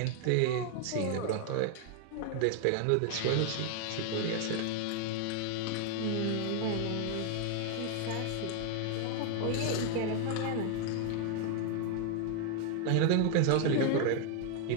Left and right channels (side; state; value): both; different; correlation 0.00